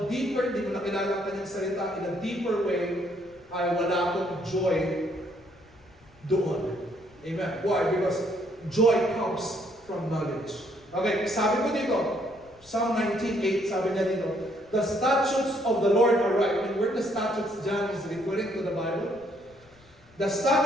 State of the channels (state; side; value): noise; left; rumble, 28 dB below the sound